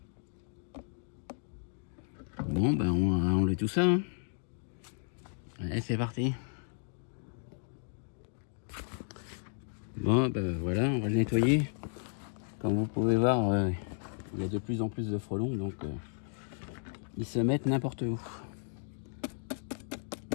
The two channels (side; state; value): right; silent; digital silence